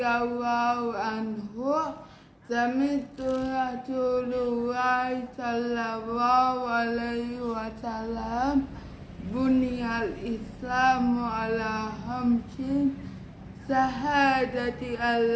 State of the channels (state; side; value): identical; both; correlation 1.00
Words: anhu, sami'tu Rasulullah sallallahu alaihi wasallam buniyal Islamu ala khamsin syahadati